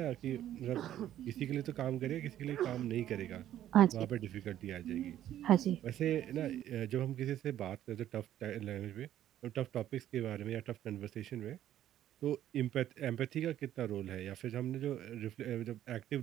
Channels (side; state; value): left; quieter; 11.9 dB